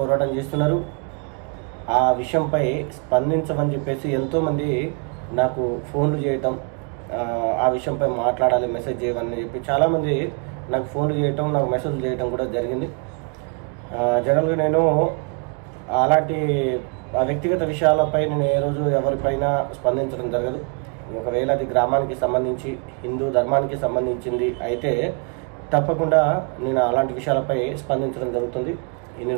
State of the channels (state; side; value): quieter; left; 37.2 dB